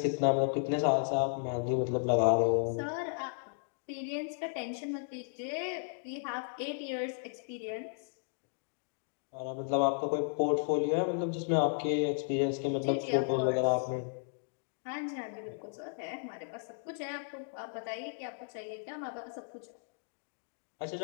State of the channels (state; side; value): silent; right; digital silence